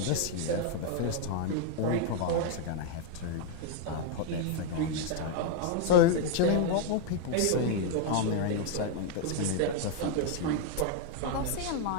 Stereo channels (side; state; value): both; different; correlation 0.00